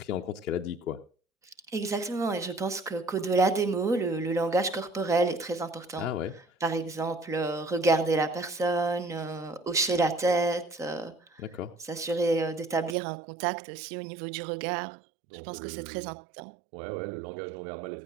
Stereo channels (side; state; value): left; drops out; at 13.0 s